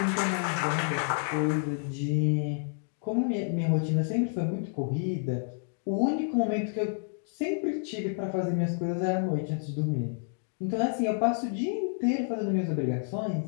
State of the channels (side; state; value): right; silent; 58 dB below the other